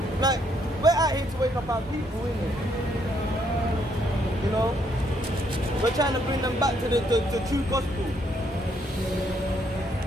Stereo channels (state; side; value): normal; both; correlation 0.71